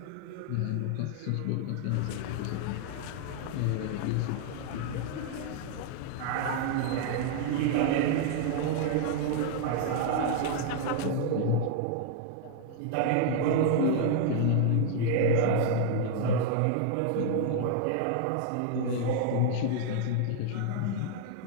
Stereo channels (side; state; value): both; different; correlation 0.00